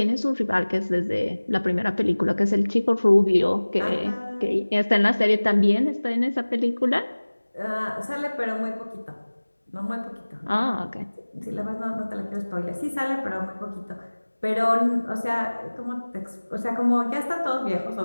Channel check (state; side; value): inverted; both; correlation -1.00